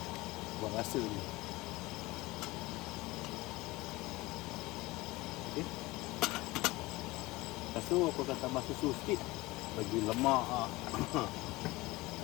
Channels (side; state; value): right; quieter; 20.7 dB